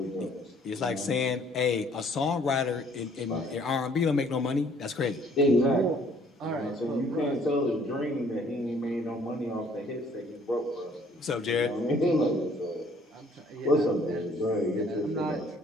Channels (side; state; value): both; normal; correlation 0.60